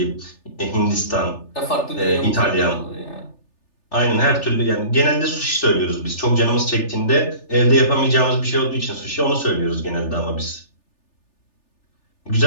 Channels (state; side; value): late; right; 3.4 ms